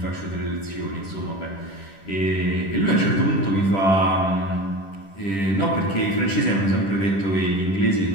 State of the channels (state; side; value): late; right; 10 ms